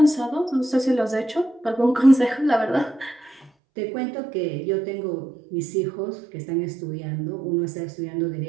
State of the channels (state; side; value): drops out; left; at 3.5 s